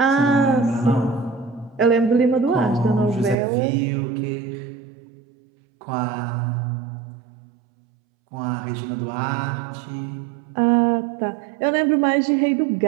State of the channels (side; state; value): left; drops out; at 3.4 s